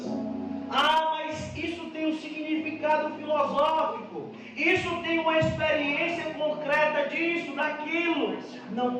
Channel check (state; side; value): identical; both; correlation 1.00